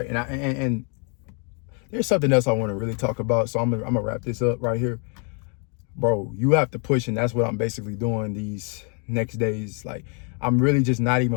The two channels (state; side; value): quieter; right; 38.4 dB